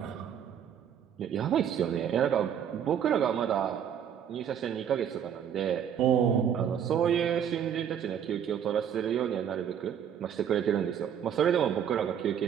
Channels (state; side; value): quieter; left; 8.7 dB